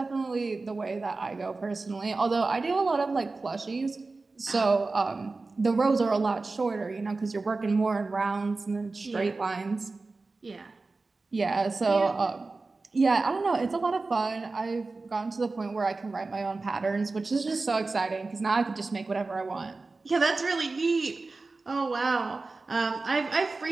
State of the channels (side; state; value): left; quieter; 3.7 dB